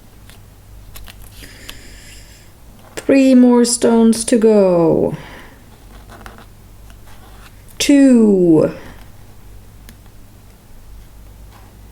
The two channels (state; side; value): identical; both; correlation 1.00